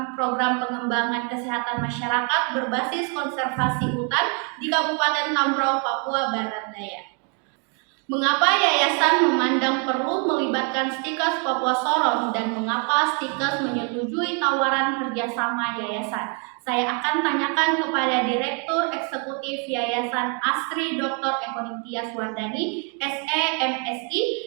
program pengembangan kesehatan masyarakat berbasis konservasi hutan di Kabupaten Tambrau, Papua Barat Daya. Mengapa yayasan memandang perlu melibatkan Stikes Papua Sorong dan mengapa Stikes menyetujui tawaran kerjasama yayasan? Saya akan tanyakan kepada Direktur Eksekutif Yayasan ASRI Dr. Ekoningtias Wardani, SE MSI,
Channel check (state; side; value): quieter; left; 37.8 dB